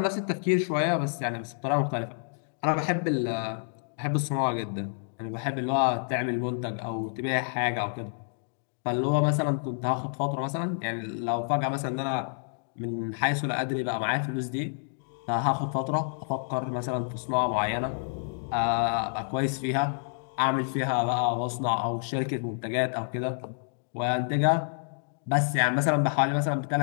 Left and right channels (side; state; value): right; silent; digital silence